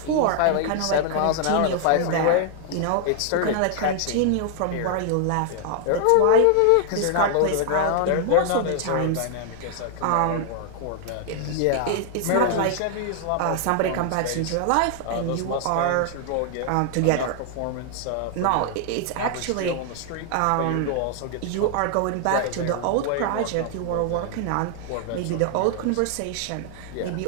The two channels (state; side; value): different; both; correlation 0.00